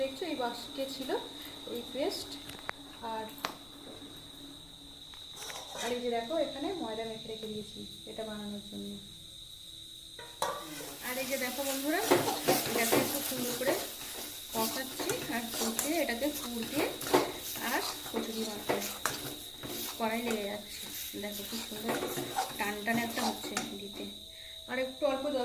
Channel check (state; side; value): noise; left; rumble, 22 dB below the sound